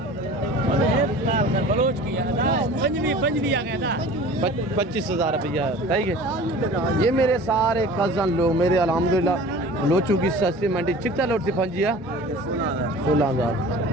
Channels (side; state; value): both; normal; correlation 0.42